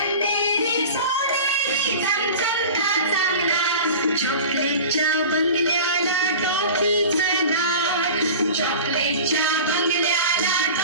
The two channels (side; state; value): both; inverted; correlation -0.36